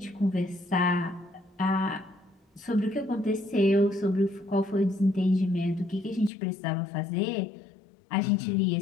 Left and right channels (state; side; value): drops out; right; at 6.3 s